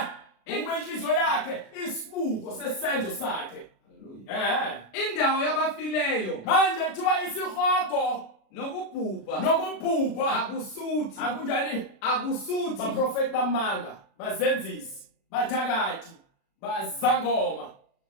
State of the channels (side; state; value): right; late; 36 ms